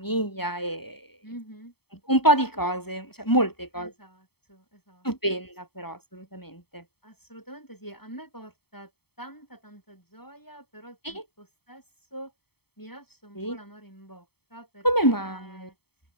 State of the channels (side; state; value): right; late; 0.96 ms